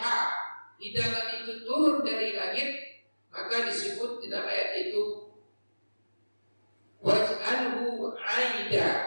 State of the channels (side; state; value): both; inverted; correlation -1.00